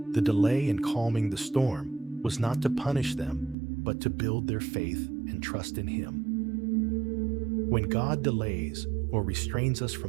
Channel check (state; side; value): drops out; left; at 3.6 s